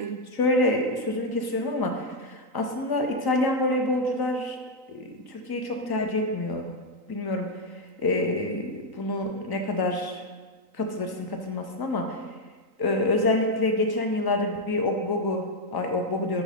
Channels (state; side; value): late; left; 3.9 ms